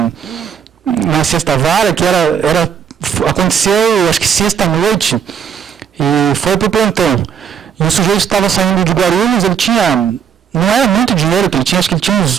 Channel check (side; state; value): left; quieter; 7.7 dB